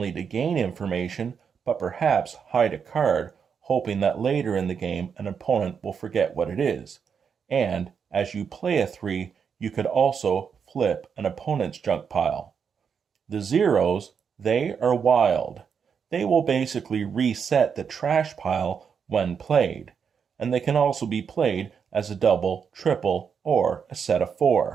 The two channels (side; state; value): left; quieter; 6.7 dB